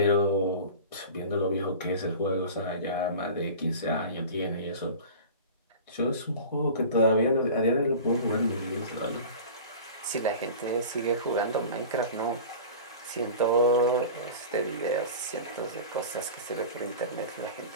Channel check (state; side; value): inverted; both; correlation -0.36